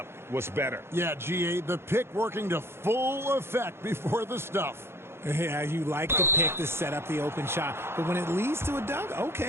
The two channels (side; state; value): left; late; 0.12 ms